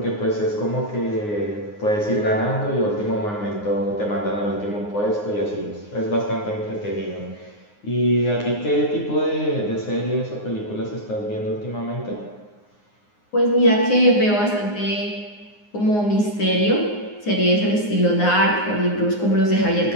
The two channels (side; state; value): right; late; 9.6 ms